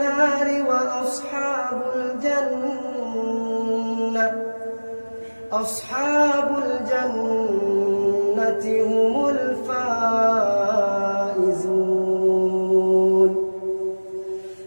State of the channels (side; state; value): both; inverted; correlation -1.00